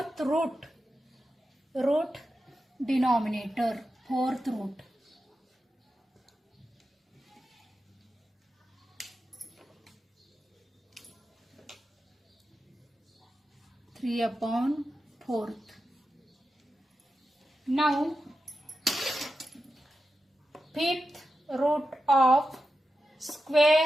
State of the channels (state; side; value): normal; both; correlation 0.90